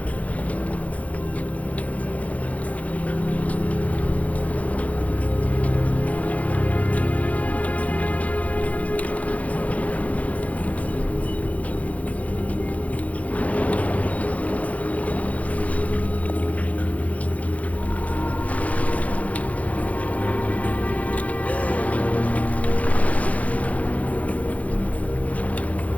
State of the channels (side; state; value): right; late; 0.068 ms